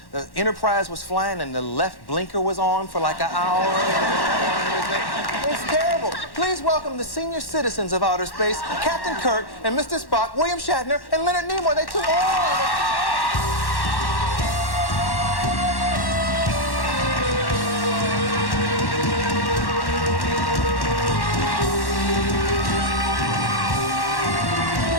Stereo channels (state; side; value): late; right; 1.1 ms